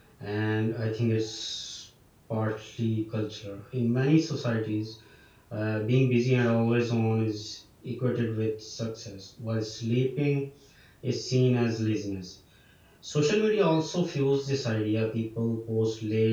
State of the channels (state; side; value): identical; both; correlation 1.00